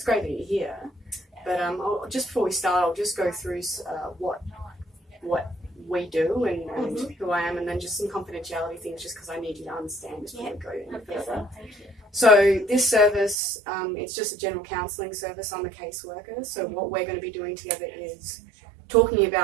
great that you're here, but just before we start, I'll just go through what we do and who I am, and then just some confidentiality things, just because I need you to understand before we go any further. Thank you. So this service, it's just a general counselling service. I'm a caseworker, so what we're going to be doing together is talking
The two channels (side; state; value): left; drops out; at 13.4 s